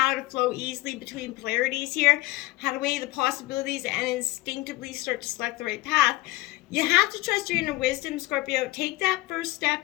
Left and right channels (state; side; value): quieter; right; 19.6 dB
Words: to flow easily between polarities here, how to weigh the possibilities and instinctively start to select the right path. You have to trust your inner wisdom, Scorpio. Take that first